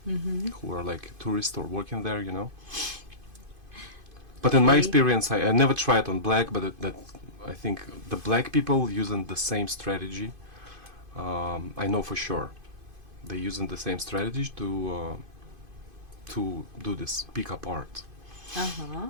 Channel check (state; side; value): late; left; 2.5 ms